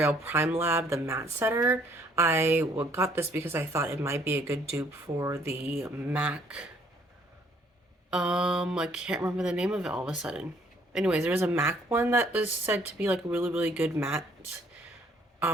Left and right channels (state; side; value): normal; both; correlation 0.63